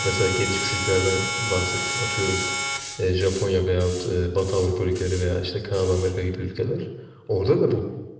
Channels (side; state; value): both; identical; correlation 1.00